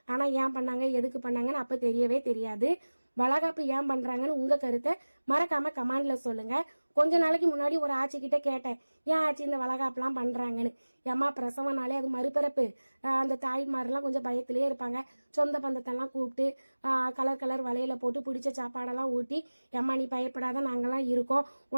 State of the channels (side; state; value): both; inverted; correlation -1.00